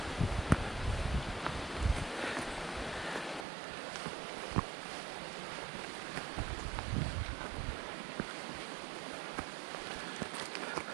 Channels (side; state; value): left; drops out; at 3.5 s